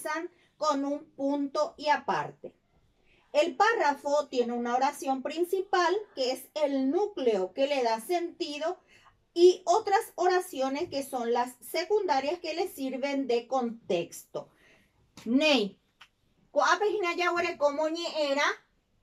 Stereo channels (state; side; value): identical; both; correlation 1.00